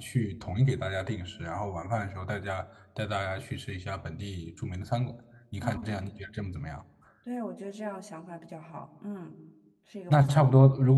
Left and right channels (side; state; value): both; identical; correlation 1.00